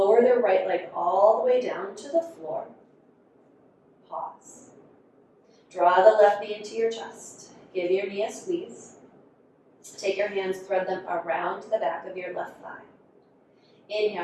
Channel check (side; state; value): both; identical; correlation 1.00